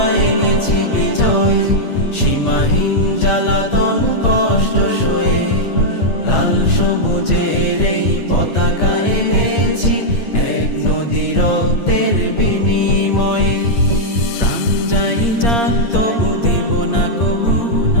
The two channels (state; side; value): late; right; 8.6 ms